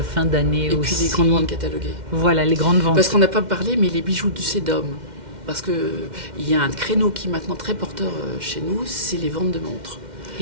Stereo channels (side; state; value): left; late; 2.1 ms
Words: fin d'année aussi. Et puis les grandes ventes cataloguées. Voilà, les grandes ventes. Parce qu'on n'a pas parlé, mais les bijoux du Cédum. Parce qu'il y a un créneau qui est maintenant très porteur chez nous, c'est les ventes de montres.